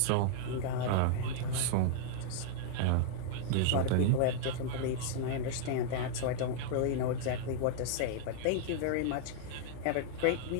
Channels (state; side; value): different; both; correlation -0.01